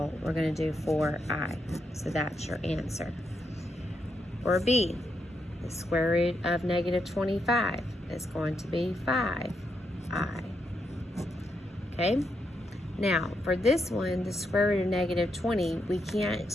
we're going to do 4i. So that's your answer. Or B, the square root of -25 is going to be 5i. Okay? Now, for this one, the square root of -20, we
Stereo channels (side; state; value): both; normal; correlation 0.81